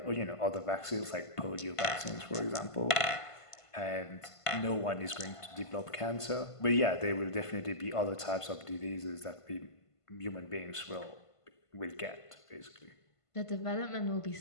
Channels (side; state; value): right; late; 1.5 ms